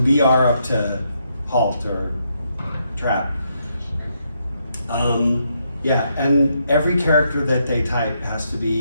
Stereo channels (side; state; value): both; inverted; correlation -0.78